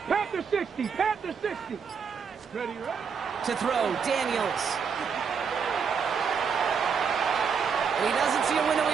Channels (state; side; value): quieter; left; 6.3 dB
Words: Panther 60. Panther 60. Ready, right? To throw, Daniels. He doesn't see a window